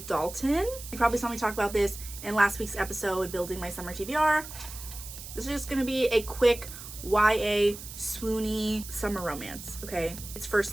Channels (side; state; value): right; noise; hiss, 12 dB below the sound